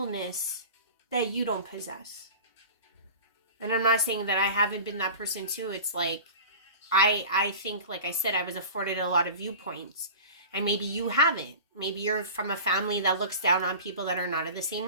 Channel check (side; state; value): both; inverted; correlation -0.36